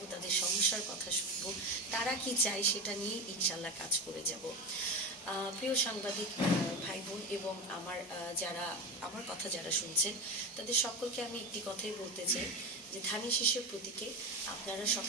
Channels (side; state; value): both; normal; correlation 0.20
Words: তাদের সমস্যার কথা শুনবো, তারা কি চায় সেটা নিয়ে ইনশাল্লাহ কাজ করে যাব। প্রিয় সাংবাদিক ভাই বোন এবং যারা আমার কথা যারা শুনছেন, তাদের সকলকে আমি একটি কথাই বলতে চাই যে ধানের শীষের প্রতীকে আপনারা